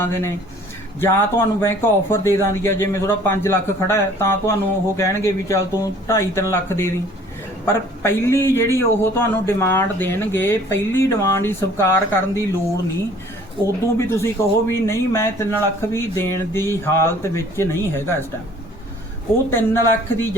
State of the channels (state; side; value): normal; both; correlation 0.53